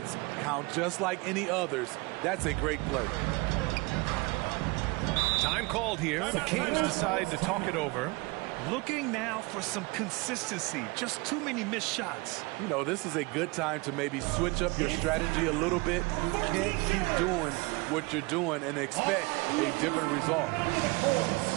count just like any others. That's a great play. Time called here. The Kings decide to talk it over. Looking now for some consistency. Just too many missed shots. You know, this is a good time to maybe switch up your strategy a little bit. You can't keep doing what you're doing and expect a different result.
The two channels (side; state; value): left; quieter; 25.8 dB